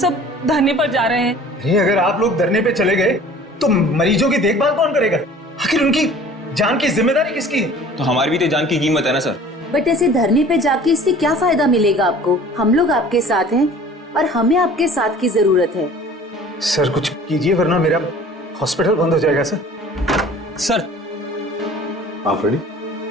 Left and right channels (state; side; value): normal; both; correlation 0.47